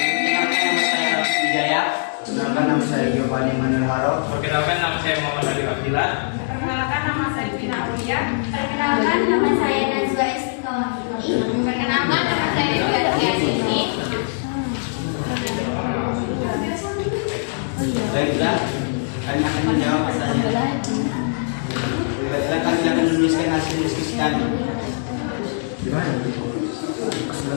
nama saya Alex Wijaya. Perkenalkan nama saya Giovanni Manuel Haro. Perkenalkan nama saya Muhammad Ali Abdillah. Perkenalkan nama saya Vina Aulia. Perkenalkan nama saya Najwa Istiqomah. Perkenalkan nama saya Tia Sini. Baiklah, kami akan menjawab pertanyaan. Baiklah, kami akan menuliskan hasil diskusi kami. Gimana?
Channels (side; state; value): right; silent; digital silence